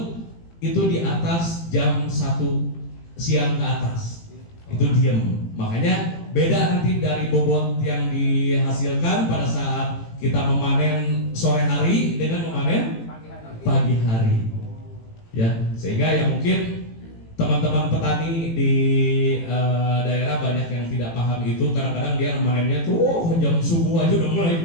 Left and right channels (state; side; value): late; right; 18 ms